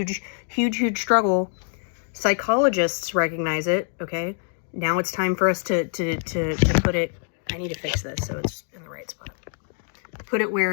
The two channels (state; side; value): silent; right; 56 dB below the other